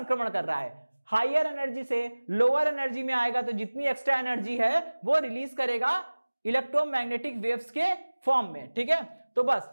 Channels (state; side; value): inverted; both; correlation -1.00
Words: कर रहा है, हायर एनर्जी से लोअर एनर्जी में आएगा तो जितनी एक्स्ट्रा एनर्जी है वो रिलीज करेगा इलेक्ट्रोमैग्नेटिक वेव्स के फॉर्म में, ठीक है। तो बस